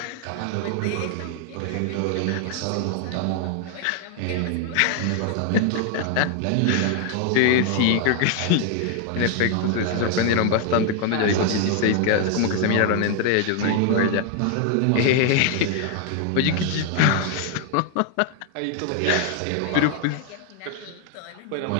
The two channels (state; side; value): different; both; correlation 0.00